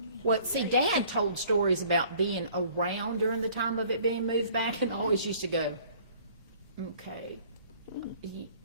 Well, see, Dad told stories about being around during the time of it being moved back, and always used to go, okay,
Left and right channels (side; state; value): both; inverted; correlation -0.54